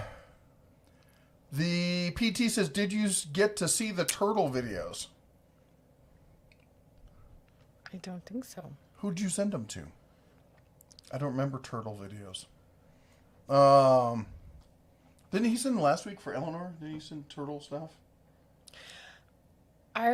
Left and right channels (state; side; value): identical; both; correlation 1.00